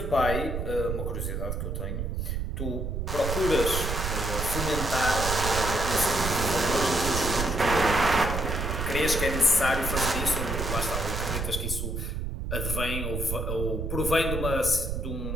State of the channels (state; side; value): noise; right; rumble, 3 dB below the sound